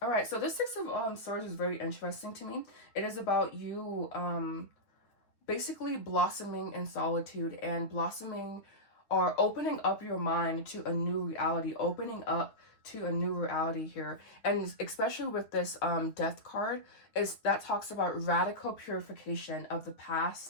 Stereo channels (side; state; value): right; late; 8.9 ms